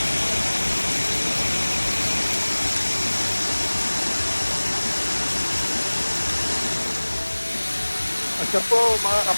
Siya po mga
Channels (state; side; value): inverted; both; correlation -1.00